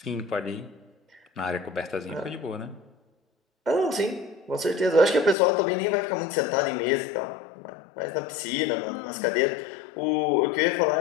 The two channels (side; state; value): right; drops out; at 5.4 s